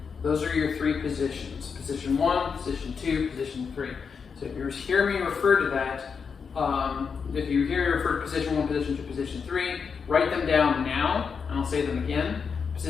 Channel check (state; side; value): quieter; right; 5.9 dB